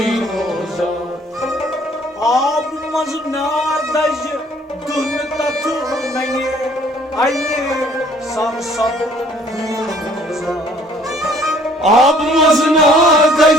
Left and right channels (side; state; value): both; normal; correlation 0.58